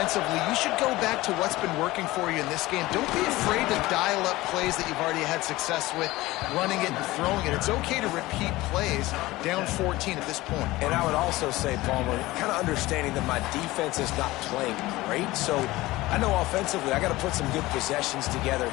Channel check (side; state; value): right; quieter; 18.8 dB